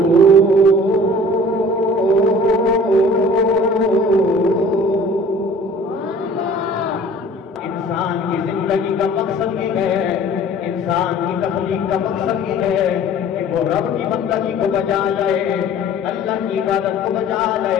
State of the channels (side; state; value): both; normal; correlation 0.47